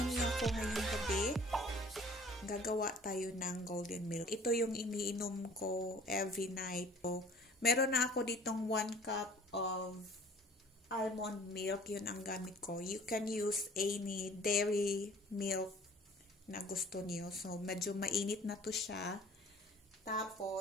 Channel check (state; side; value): normal; both; correlation 0.50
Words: niyo ako ngayong gabi. Gagawa tayo ng golden milk. Ito yung iniinom ko every night. So, meron na ako ditong 1 cup of almond milk. Yun ang gamit ko. You can use any dairy milk na gusto niyo. So, medyo mainit na to siya.